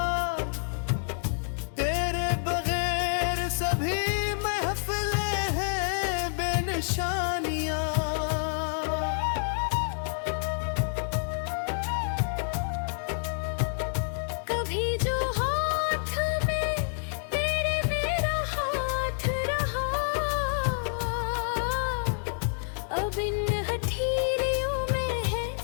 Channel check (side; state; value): right; silent; digital silence